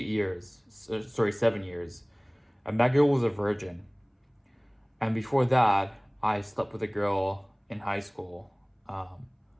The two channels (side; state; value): both; identical; correlation 1.00